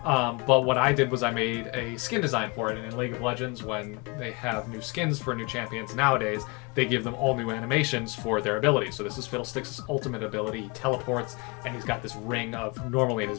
But what I did was I made a skin design for it. And in League of Legends, when they have new skins for new champions nowadays, they give them all new animations for their abilities. So this is Fiddlesticks' ultimate ability. He teleports, and he's got this ring of, normally in his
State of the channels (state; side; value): quieter; right; 28.5 dB